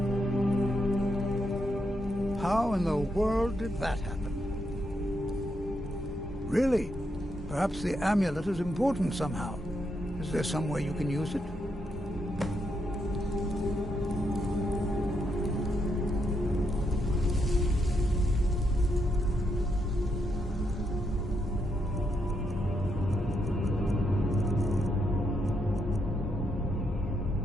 How in the world did that happen? Really? Perhaps the amulet is important somehow. Is there some way you can use it?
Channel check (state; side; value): normal; both; correlation 0.80